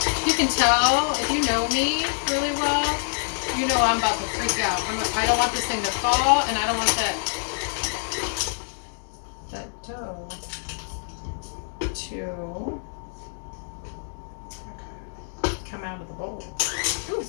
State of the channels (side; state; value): right; silent; digital silence